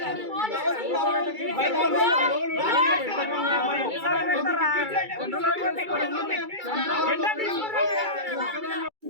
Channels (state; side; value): late; left; 2.3 ms